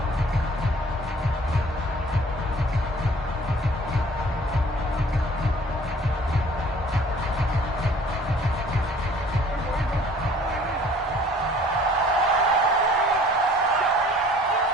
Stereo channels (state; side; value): normal; both; correlation 0.53